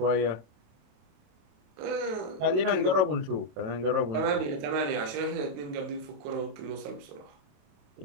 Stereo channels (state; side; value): late; left; 28 ms